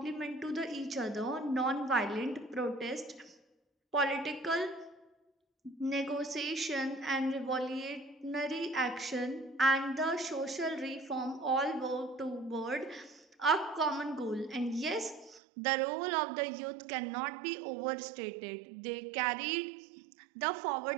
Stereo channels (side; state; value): left; drops out; at 15.4 s